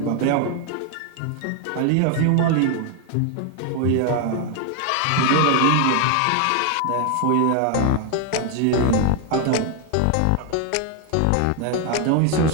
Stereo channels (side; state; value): both; different; correlation 0.01